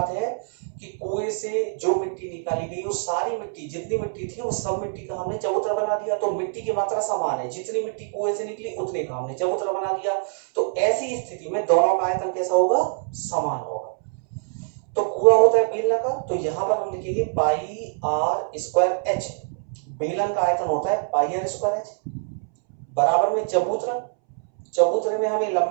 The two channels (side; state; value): left; silent; 62 dB below the other